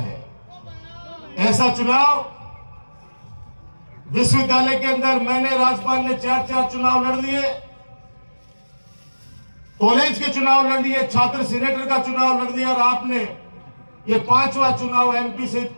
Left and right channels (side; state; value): both; inverted; correlation -1.00